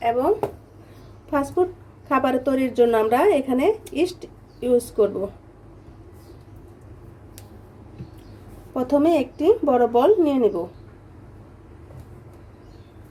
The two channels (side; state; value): both; identical; correlation 1.00